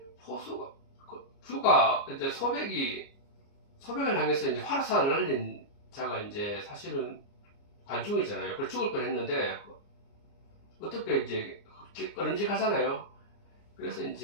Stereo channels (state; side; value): late; right; 30 ms